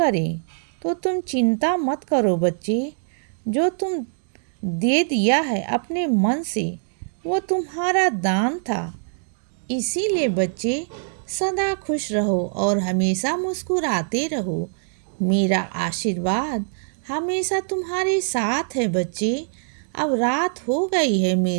तो तुम चिंता मत करो बच्चे। जो तुम दे दिया है अपने मन से, वो तुम्हारा दान था। इसीलिए बच्चे, सदा खुश रहो और हमेशा मुस्कुराते रहो। मेरा आशीर्वाद हमेशा तुम्हारे साथ है बच्चे। अब रात हो गई है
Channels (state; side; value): silent; left; digital silence